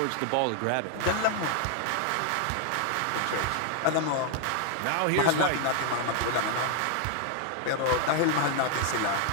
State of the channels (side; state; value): both; different; correlation 0.00